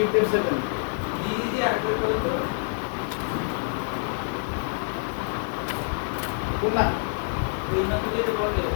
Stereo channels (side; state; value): right; silent; 61 dB below the other